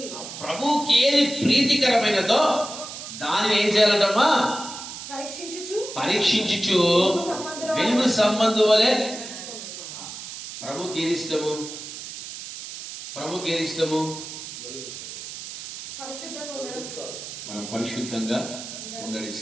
ప్రభుకి ఏది ప్రీతికరమైనదో దాన్ని ఏం చేయాలంటమ్మా? పరీక్షించుచు వెలుగు సంబంధు వలె. ప్రభుకి ఏది ఇష్టము? మనం పరిశుద్ధంగా ఉండడం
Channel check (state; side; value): noise; right; hiss, 10 dB below the sound